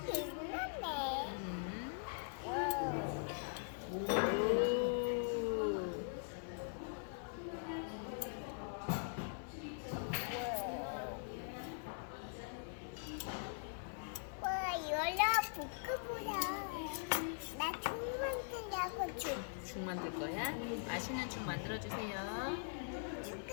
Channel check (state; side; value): silent; right; digital silence